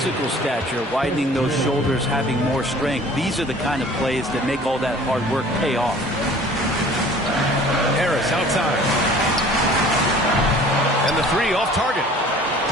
stature, widening those shoulders, having more strength, these are the kind of plays that make all that hard work pay off. Harris outside. And the 3 off target.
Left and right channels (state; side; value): normal; both; correlation 0.49